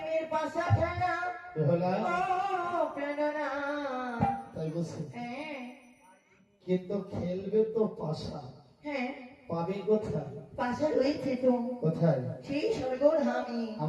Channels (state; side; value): identical; both; correlation 1.00